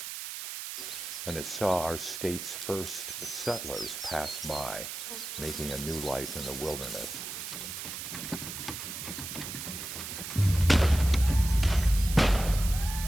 And it saw our state's first settlers pass by, making a new life in the wilderness.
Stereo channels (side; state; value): right; noise; hiss, 7 dB below the sound